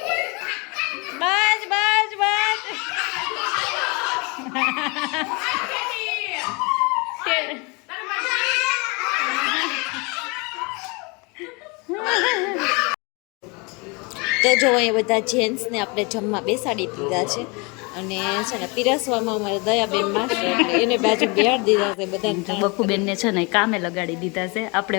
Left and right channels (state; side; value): quieter; right; 29.4 dB